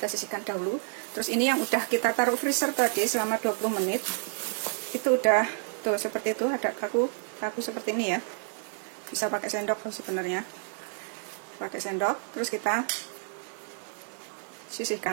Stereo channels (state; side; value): silent; left; 58 dB below the other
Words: sisihkan dahulu. Terus ini yang udah kita taruh freezer tadi selama 20 menit. Itu udah tuh seperti itu, ada kaku seperti ini ya. Bisa pakai sendok sebenarnya. Pakai sendok, terus kita